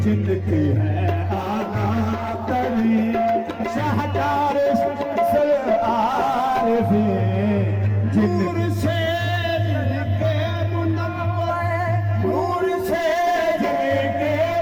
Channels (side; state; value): both; identical; correlation 1.00